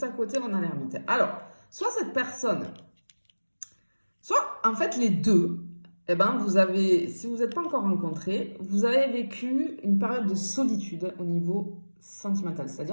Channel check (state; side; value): inverted; both; correlation -1.00